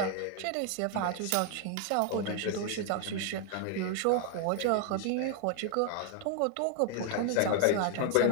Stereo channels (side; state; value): both; different; correlation 0.00